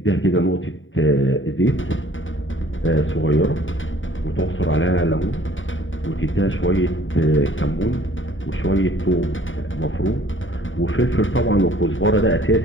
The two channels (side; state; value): right; late; 0.57 ms